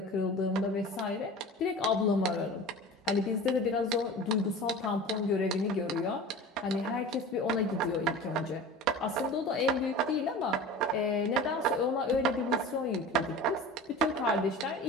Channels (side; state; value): both; normal; correlation 0.36